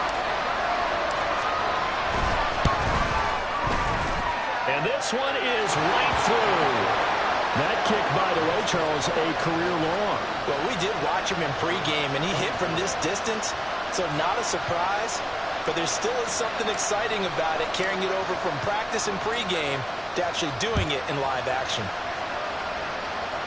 And this one is right through. That kick, by the way, Charles, a career long. Well, we did watch him in pregame, and he hit from this distance, so not a surprise. But there still is something exciting about it, carrying it over from practice and pregame to actually doing it in live action.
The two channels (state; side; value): identical; both; correlation 1.00